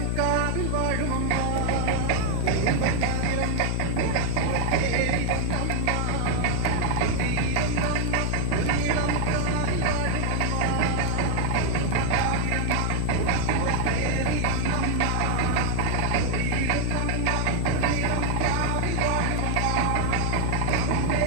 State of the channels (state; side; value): different; both; correlation 0.00